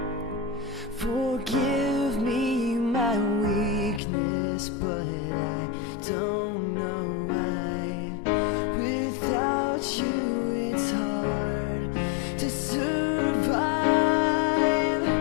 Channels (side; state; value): right; drops out; at 4.0 s